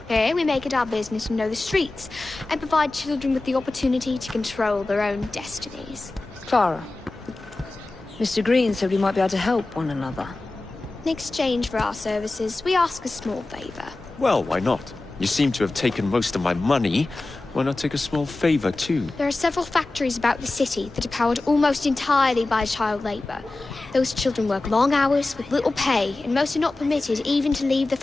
Here we make it our business to know the streets and provide children with the opportunity to control their own destinies. Clara. Mr. Green said we might be able to help one another. In exchange for our services, we ask a small favor. Well, why not? You seem to have taken most of my money. Why not take a small favor, too? There are several factories about the city that are powered almost entirely by child labor. Those children work long hours with little pay, and most are not permitted even to leave the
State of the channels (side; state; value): right; quieter; 3.0 dB